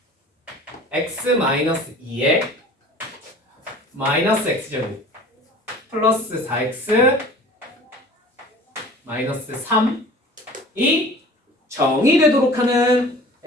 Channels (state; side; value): normal; both; correlation 0.44